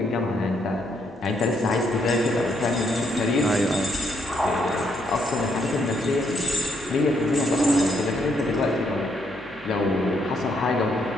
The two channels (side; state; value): both; normal; correlation 0.74